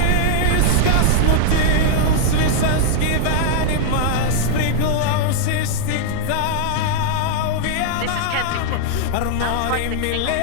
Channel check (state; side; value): different; both; correlation -0.01